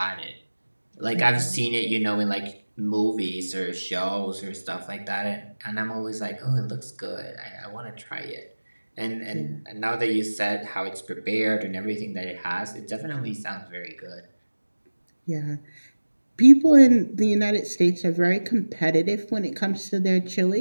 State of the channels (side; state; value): both; inverted; correlation -1.00